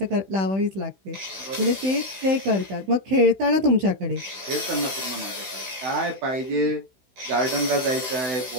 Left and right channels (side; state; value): left; late; 16 ms